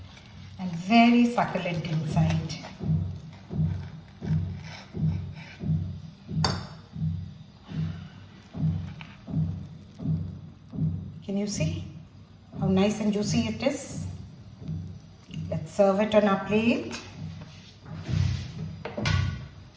and very succulent inside. Can you see how nice and juicy it is? Let's serve it on our plate.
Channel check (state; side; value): identical; both; correlation 1.00